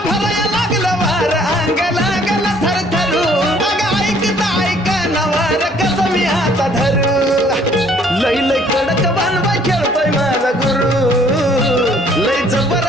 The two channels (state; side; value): normal; both; correlation 0.60